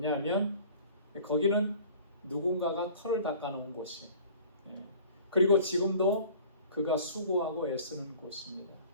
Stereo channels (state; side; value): inverted; both; correlation -0.47